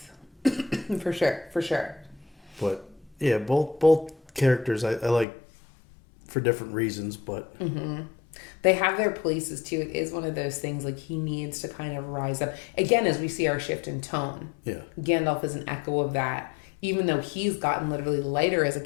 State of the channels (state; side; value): drops out; right; at 5.2 s